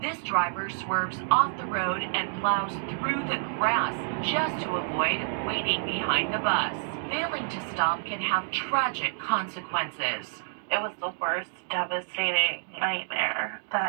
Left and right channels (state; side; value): silent; left; digital silence